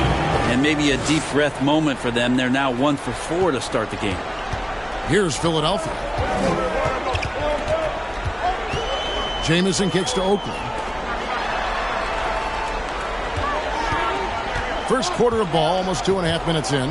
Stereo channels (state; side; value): identical; both; correlation 1.00